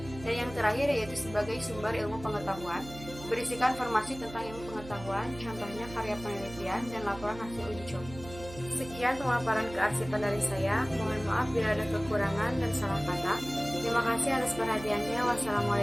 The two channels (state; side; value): noise; right; hum, 15 dB below the sound